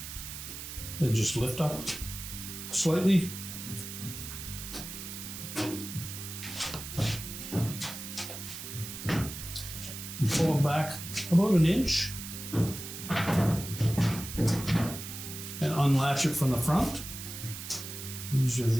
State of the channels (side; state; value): right; noise; hiss, 9 dB below the sound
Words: And just lift up slightly. And pull them back about an inch. And unlatch it from the front. These are